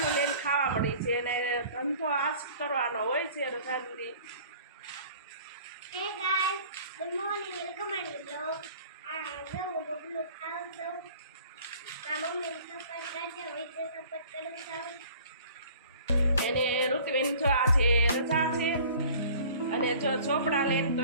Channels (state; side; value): inverted; both; correlation -0.49